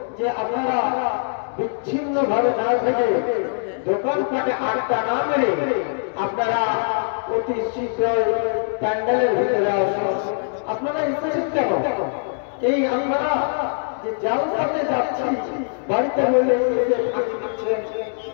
যে আপনারা বিচ্ছিন্ন ভাবে না থেকে, দোকানপাটে আড্ডা না মেরে আপনারা অতি শীঘ্রই প্যান্ডেলের ভিতরে আসুন। আপনারা এসেছেন কেন? এই আপনারা যে জালসাতে যাচ্ছি, বাড়িতে হইলে ফাঁকি দিচ্ছেন,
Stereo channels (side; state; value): right; silent; digital silence